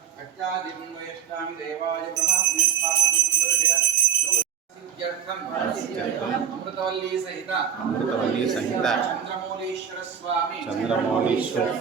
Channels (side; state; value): left; quieter; 8.1 dB